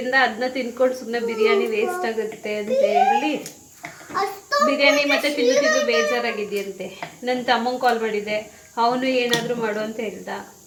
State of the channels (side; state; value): both; identical; correlation 1.00